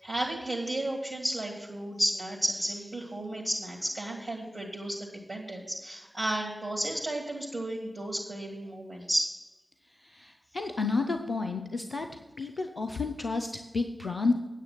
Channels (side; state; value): both; normal; correlation 0.92